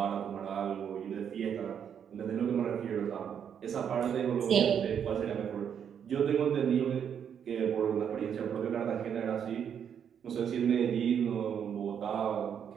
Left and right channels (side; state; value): left; quieter; 8.2 dB